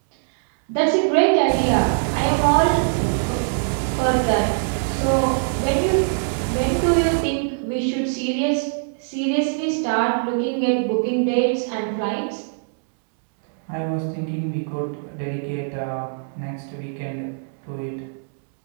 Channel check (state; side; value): silent; left; digital silence